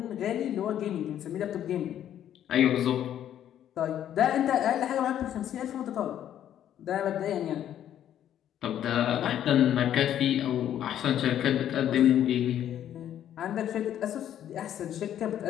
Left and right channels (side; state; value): right; quieter; 10.7 dB